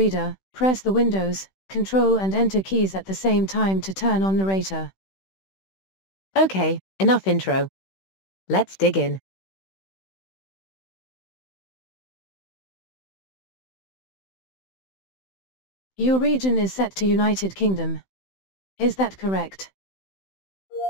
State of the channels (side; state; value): right; late; 16 ms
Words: press the Windows, Control and Enter keys at the same time to turn on narrator. Okay, enough intro. Let's dig in. Your region is set to United Kingdom. Is that correct?